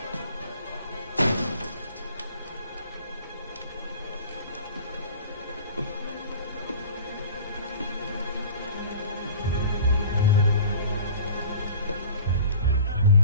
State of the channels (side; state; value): both; inverted; correlation -0.41